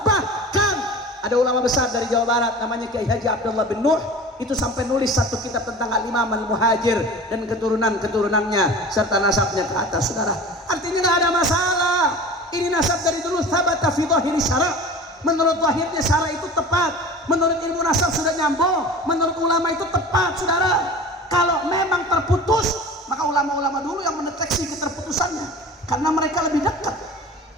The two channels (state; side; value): normal; both; correlation 0.37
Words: bahkan ada ulama besar dari Jawa Barat namanya Kiai Haji Abdullah bin Nuh, itu sampai nulis satu kitab tentang Al-Imam Al-Muhajir dan keturunan-keturunannya serta nasabnya ke atas saudara. Artinya nggak ada masalah. Ini nasab dari dulu thabata fi dhahiri syara'. Menurut lahirnya syara' itu tepat, menurut ilmu nasab sudah nyambung, menurut ulama itu tepat saudara. Kalau memang terputus, maka ulama-ulama dulu yang mendeteksi keterputusannya, karena mereka lebih dekat.